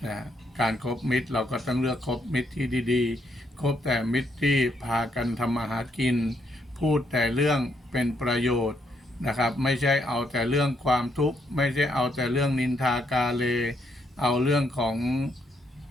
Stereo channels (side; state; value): both; normal; correlation 0.74